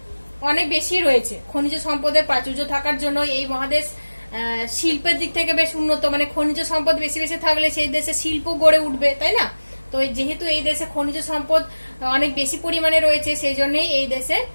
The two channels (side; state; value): both; inverted; correlation -1.00